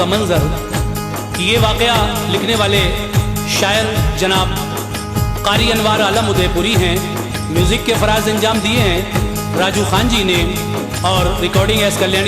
मंज़र। ये वाक़या लिखने वाले शायर जनाब क़ारी अनवार आलम उदयपुरी हैं। म्यूज़िक के फ़राज़ अंजाम दिए हैं राजू खान जी ने और recording S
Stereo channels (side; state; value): both; identical; correlation 1.00